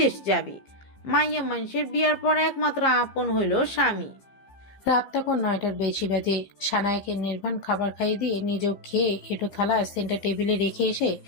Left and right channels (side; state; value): right; late; 15 ms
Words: যাবি। মাইয়া মানুষের বিয়ার পর একমাত্র আপন হইল স্বামী। রাত তখন 9টার বেশি বাজে। সানায়াকে নির্বাণ খাবার খাইয়ে দিয়ে নিজেও খেয়ে এটো থালা সেন্টার টেবিলে রেখে এসে